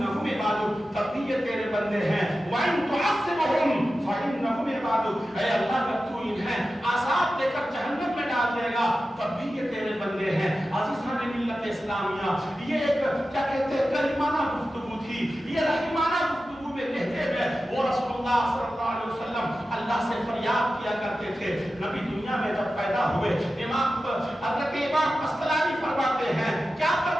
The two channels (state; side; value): normal; both; correlation 0.93